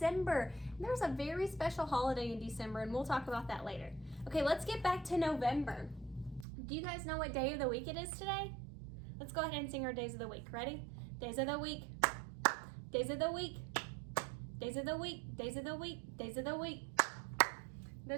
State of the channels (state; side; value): drops out; left; at 6.5 s